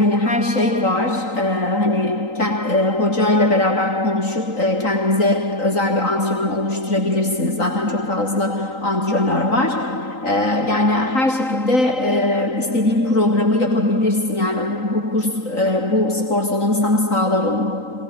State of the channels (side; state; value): right; late; 3.9 ms